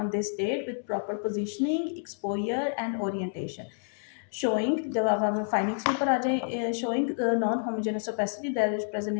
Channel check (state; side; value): silent; right; digital silence